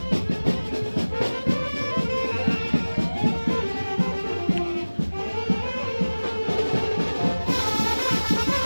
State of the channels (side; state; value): both; inverted; correlation -1.00